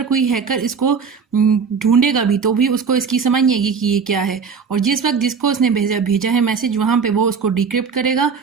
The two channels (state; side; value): quieter; left; 5.7 dB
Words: कोई हैकर इसको ढूंढेगा भी तो भी उसको इसकी समझ नहीं आएगी कि ये क्या है, और जिस वक्त जिसको उसने भेजा है मैसेज वहाँ पे वो उसको डिक्रिप्ट करेगा